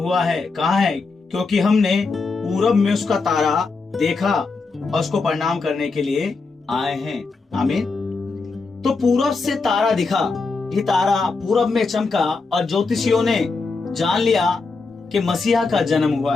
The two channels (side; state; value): right; quieter; 4.1 dB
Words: है कहाँ है? क्योंकि हमने पूरब में उसका तारा देखा और उसको प्रणाम करने के लिए आए हैं। आमीन। तो पूरब से तारा दिखा, ये तारा पूरब में चमका और ज्योतिषियों ने जान लिया कि मसीहा का जन्म हुआ